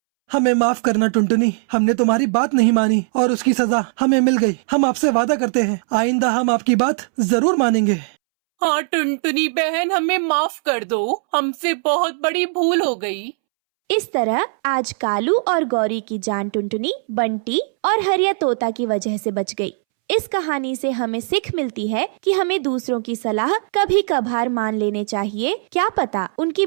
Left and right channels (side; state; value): left; silent; 66 dB below the other